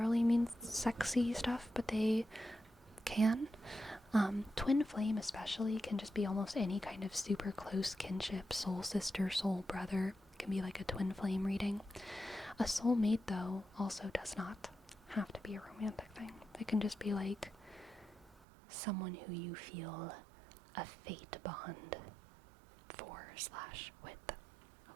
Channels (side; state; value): left; drops out; at 18.4 s